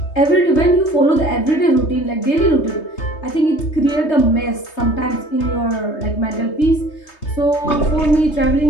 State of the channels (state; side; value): late; right; 3.3 ms